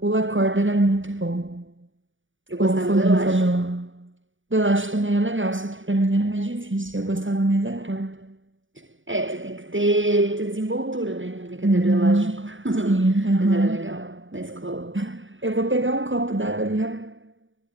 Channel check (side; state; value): left; late; 0.57 ms